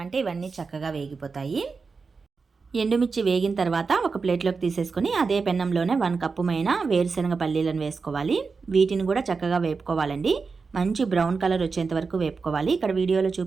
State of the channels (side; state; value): left; quieter; 4.7 dB